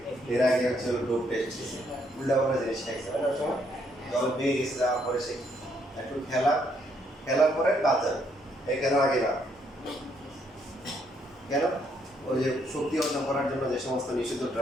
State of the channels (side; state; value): both; normal; correlation 0.72